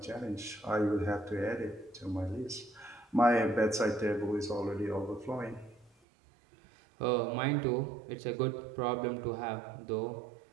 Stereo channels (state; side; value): drops out; left; at 5.9 s